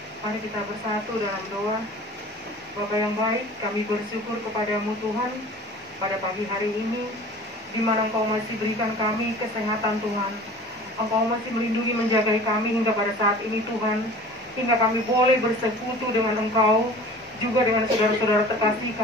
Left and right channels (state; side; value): normal; both; correlation 0.42